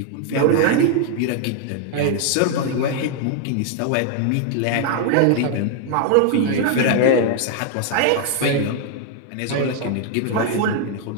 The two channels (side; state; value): both; different; correlation 0.00